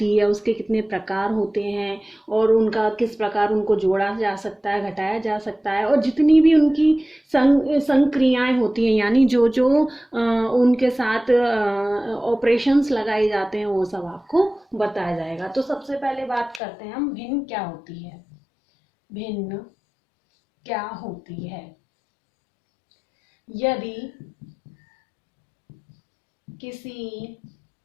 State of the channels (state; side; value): drops out; right; at 16.6 s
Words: है, उसके कितने प्रकार होते हैं और उनका किस प्रकार उनको जोड़ा जा सकता है, घटाया जा सकता है, और जितनी भी उनकी संक्रियाएं होती हैं, यानी जो जो उनके साथ ऑपरेशंस लगाए जाते हैं, वो सब आपको बताया जाएगा। तो सबसे पहले बात करते हैं हम, भिन्न क्या होती है। भिन्न क्या होती है? यदि किसी